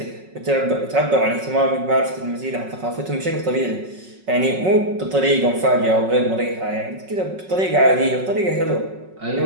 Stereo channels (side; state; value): left; late; 5.4 ms